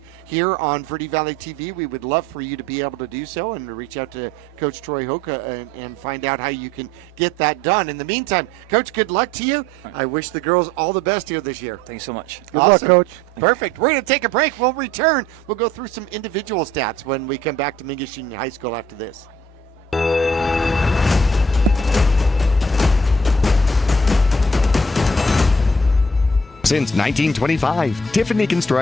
here on Verde Valley TV, we would love for you to be able to do so and reach out to Coach Troy Hoka and find out how you can get that done. In the meantime, Coach, good luck to you. I wish the girls all the best here this year. Thanks so much. Good luck, Coach. Perfect. We're going to take a break. We'll return. We'll go through some individual stats when we come back to Mingus Union High School after this. Since 1925, Tiffany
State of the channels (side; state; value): both; normal; correlation 0.58